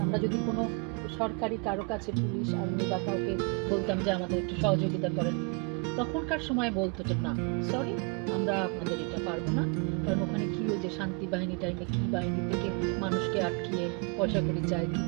আমরা যদি কোনো সরকারি কারো কাছে পুলিশ আর্মি বা কাউকে বলতাম যে আমাদের একটু সহযোগিতা করেন, তখনকার সময় বলতো যে না সরি, আমরা আপনাদের এটা পারবো না, কারণ ওখানে কি ওই যে শান্তি বাহিনী টাইমে কি বাহিনী থেকে মানুষকে আটকিয়ে পয়সা করি চায়, কি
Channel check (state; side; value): quieter; left; 34.5 dB